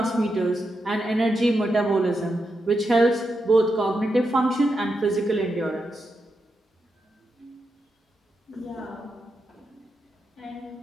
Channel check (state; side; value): normal; both; correlation 0.85